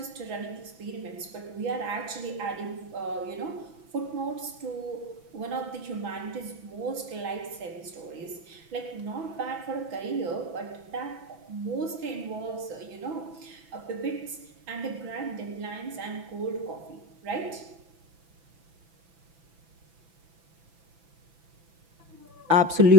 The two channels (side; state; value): left; late; 6.0 ms